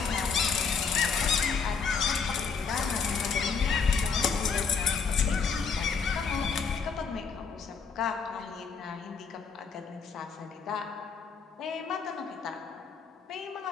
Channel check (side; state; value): right; quieter; 5.6 dB